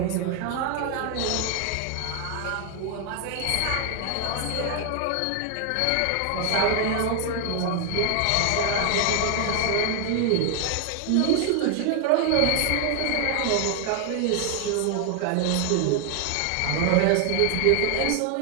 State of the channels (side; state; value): both; different; correlation 0.00